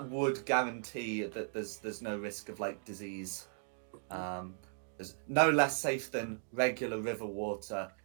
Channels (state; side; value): silent; left; digital silence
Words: would guarantee that there's no risk of disease. There's no less safe than regular river water.